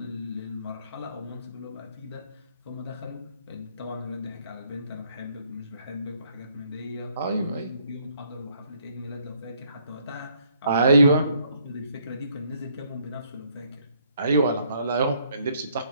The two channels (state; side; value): inverted; both; correlation -0.68